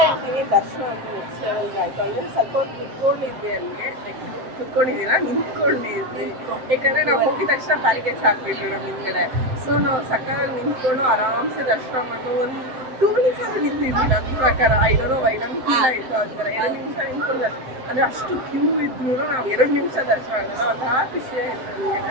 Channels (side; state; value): left; late; 7.7 ms